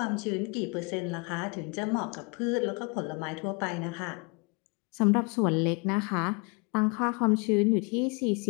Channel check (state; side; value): quieter; right; 31.9 dB